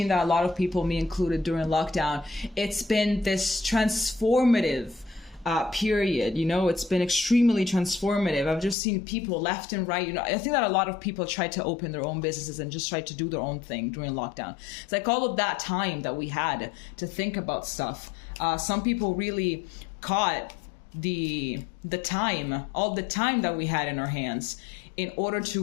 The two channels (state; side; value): drops out; right; at 8.8 s